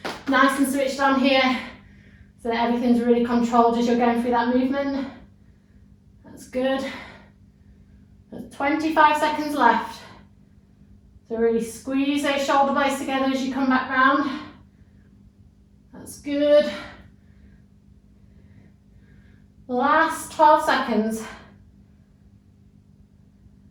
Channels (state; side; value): identical; both; correlation 1.00